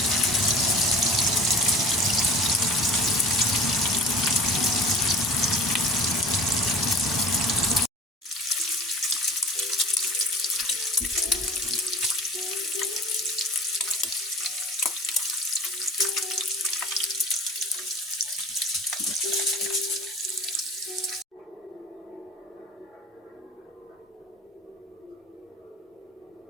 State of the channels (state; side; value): normal; both; correlation 0.40